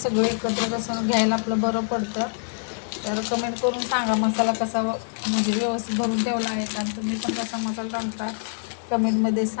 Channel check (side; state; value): right; silent; digital silence